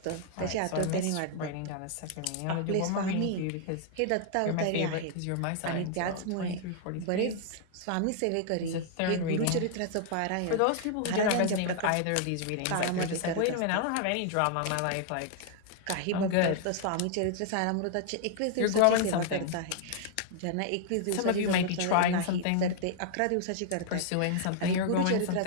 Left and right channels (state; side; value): different; both; correlation -0.01